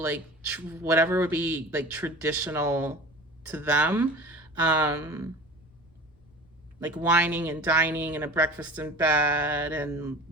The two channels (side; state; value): left; noise; rumble, 29 dB below the sound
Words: whatever would be like traditional to them. Like wining and dining and a breakfast in bed and